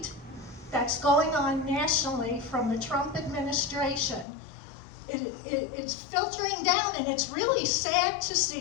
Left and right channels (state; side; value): drops out; right; at 4.2 s